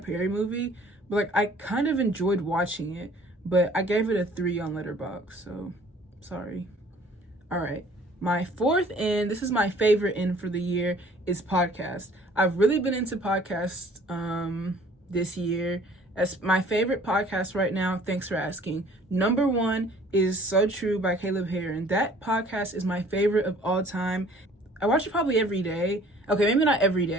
movie, but like I kind of enjoyed watching it. But I gave it a 3 on Letterboxd, so sorry. All right. My fourth in, this is my favorite in for the year, is podcast. I've really been into podcasts this year. As my favorite podcast right now, thanks for asking, number 1 is So True by Caleb Heron. That podcast is my favorite of all time. I watch it probably every day. Okay, maybe not every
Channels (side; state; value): both; normal; correlation 0.54